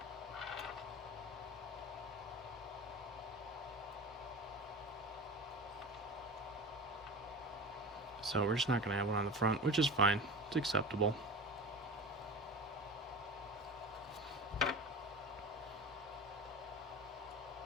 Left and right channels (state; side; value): normal; both; correlation 0.32